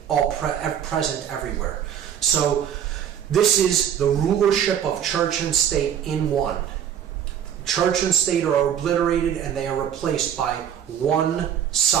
present everywhere. So this is the rulership of church and state in one. Church and state are obliterated and they are replaced by one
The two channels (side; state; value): left; quieter; 9.3 dB